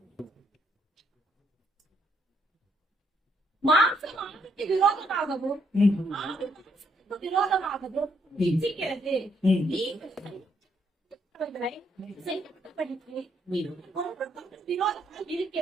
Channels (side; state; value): both; normal; correlation 0.73